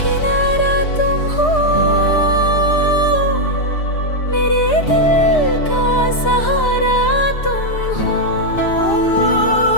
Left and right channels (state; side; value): late; right; 4.9 ms